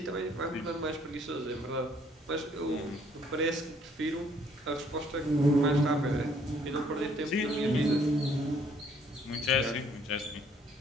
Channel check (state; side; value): normal; both; correlation 0.63